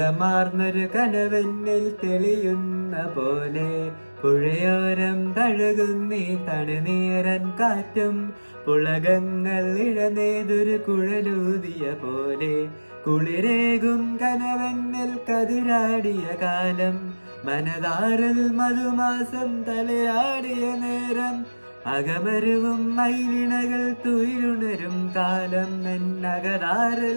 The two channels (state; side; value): inverted; both; correlation -1.00